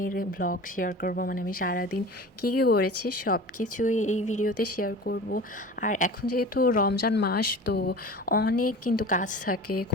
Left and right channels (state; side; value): normal; both; correlation 0.37